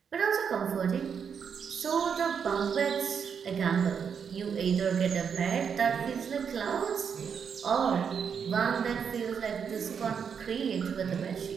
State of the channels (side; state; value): left; quieter; 6.9 dB